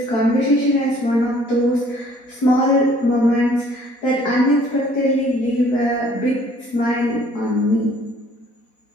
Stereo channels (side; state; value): right; late; 4.1 ms